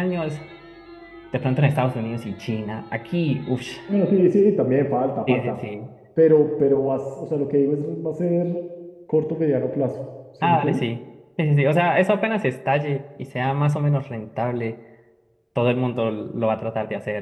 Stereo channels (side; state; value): both; identical; correlation 1.00